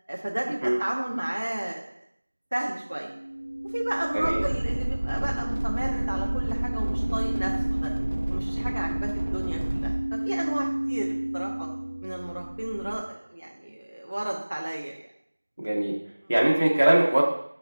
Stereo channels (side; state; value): both; inverted; correlation -1.00